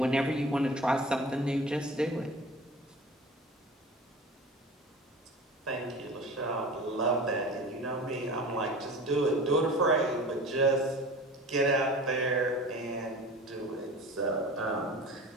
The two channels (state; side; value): normal; both; correlation 0.38